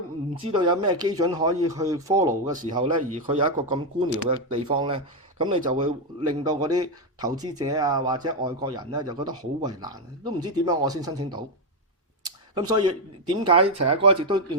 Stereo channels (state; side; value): normal; both; correlation 0.04